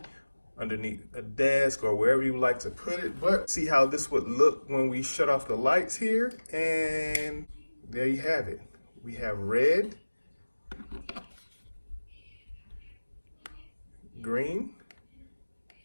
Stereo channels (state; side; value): inverted; both; correlation -1.00